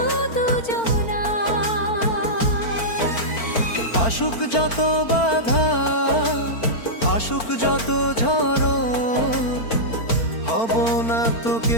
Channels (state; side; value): late; right; 4.4 ms